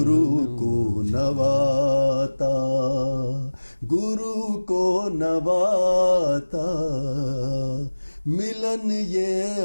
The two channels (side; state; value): both; inverted; correlation -1.00